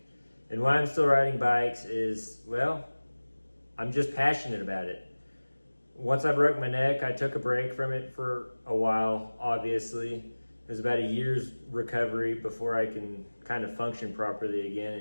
And why I'm still riding bikes is, well, I'm just passionate about it. Once I broke my neck, I took a break from it for a while, obviously. It was about a year's recovery before I can kind of function properly again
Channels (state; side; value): inverted; both; correlation -1.00